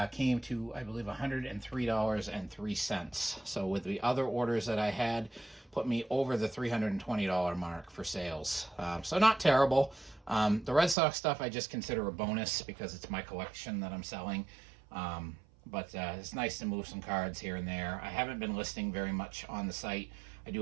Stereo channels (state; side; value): drops out; left; at 11.0 s